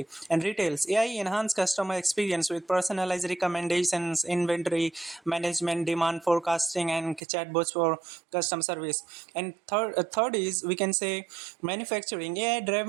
And retails. AI enhance customer experience with personalized recommendations, inventory management, demand forecasting, and chatbots for customer service. And third is we can say manufacturing.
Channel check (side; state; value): left; drops out; at 7.2 s